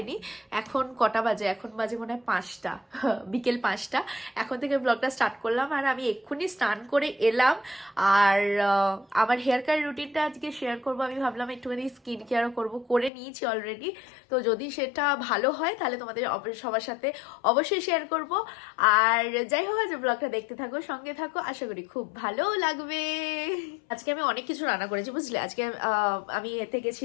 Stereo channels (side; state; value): right; drops out; at 13.1 s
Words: এখন কটা বাজে? এখন বাজে মনে হয় 5টা, বিকেল 5টা। এখন থেকে ব্লগটা স্টার্ট করলাম আর আমি এক্ষুনি স্নান করে এলাম। আর আমার হেয়ার কেয়ার রুটিনটা আজকে শেয়ার করবো। আমি ভাবলাম একটুখানি স্কিন কেয়ারও করবো, করে নিয়েছি অলরেডি। তো যদি সেটা ভালো হয় তাহলে তোমাদের সবার সাথে অবশ্যই শেয়ার করব। আর যাই হোক, আজ ব্লগটা দেখতে থাকো, সঙ্গে থাকো, আশা করি খুব ভালো লাগবে। আজকে আমি অনেক কিছু রান্না করেছি বুঝলে। আজকে আমি এতে